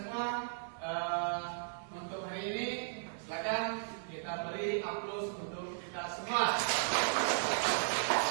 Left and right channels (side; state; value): left; silent; 54 dB below the other